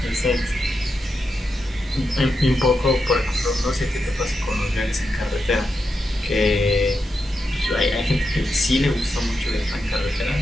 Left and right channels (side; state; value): both; normal; correlation 0.86